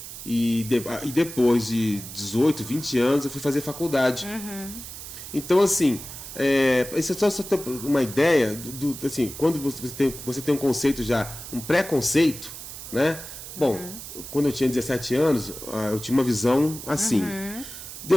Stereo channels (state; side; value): noise; right; hiss, 11 dB below the sound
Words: E depois de 18, 20 anos, eu fui fazer faculdade. Então, assim, isso é só uma ideia, assim, quando você tem um conceito já, um pré-conceito, né? Bom, quando eu tinha 17 anos, eu tinha uma visão assim.